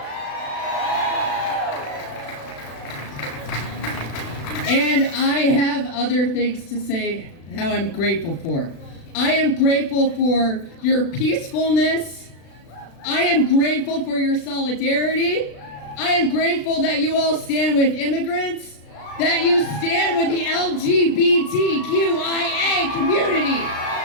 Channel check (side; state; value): right; late; 36 ms